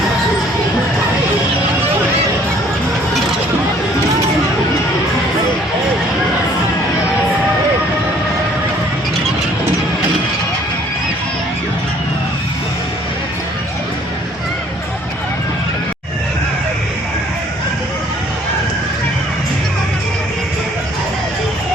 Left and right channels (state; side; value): normal; both; correlation 0.58